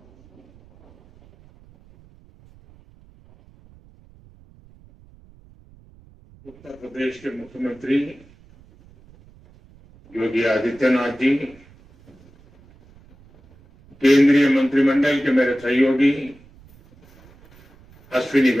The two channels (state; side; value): noise; right; rumble, 27 dB below the sound